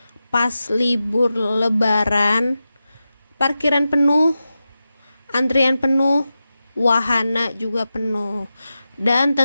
pas libur lebaran, parkiran penuh, antrian penuh, wahana juga penuh. Dan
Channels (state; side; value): inverted; both; correlation -0.92